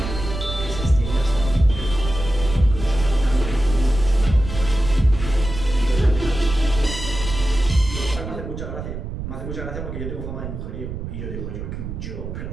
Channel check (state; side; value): noise; right; rumble, 7 dB below the sound